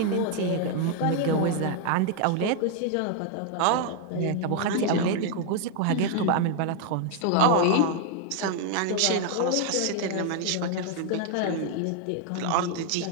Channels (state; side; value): different; both; correlation 0.00